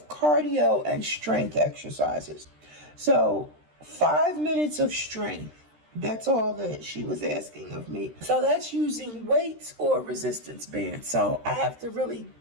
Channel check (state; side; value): late; left; 13 ms